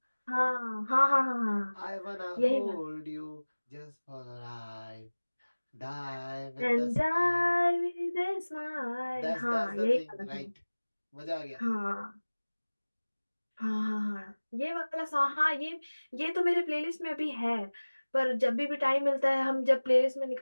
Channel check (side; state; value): both; inverted; correlation -1.00